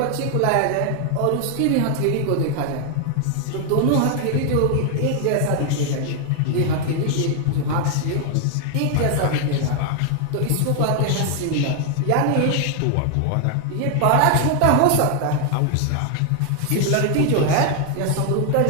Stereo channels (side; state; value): both; different; correlation 0.00